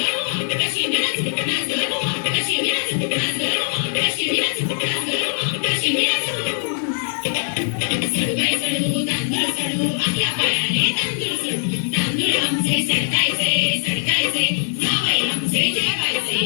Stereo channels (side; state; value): right; silent; digital silence